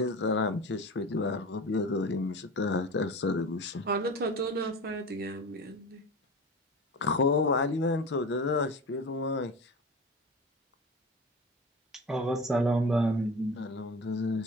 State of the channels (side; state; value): both; normal; correlation 0.32